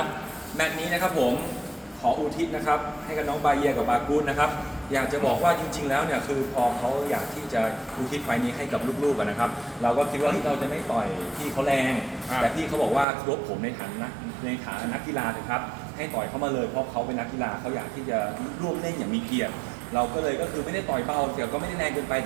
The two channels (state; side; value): drops out; left; at 13.1 s